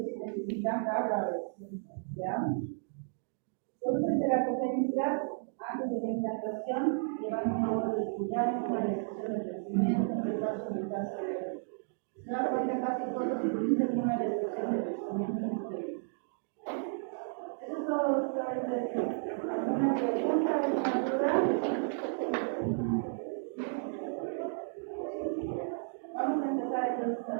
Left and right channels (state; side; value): silent; left; digital silence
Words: necesitan cargas, ¿ya? Entonces, terapogenicidad antes de la implantación, llevando un lóbulo reticular, una restricción de crecimiento, un retraso mental severo. Se da cuenta casi todos utilizan una restricción de crecimiento uterino. Eso es todo, doctor. ¿Alguna pregunta, alguna duda? Vamos a empezar entonces con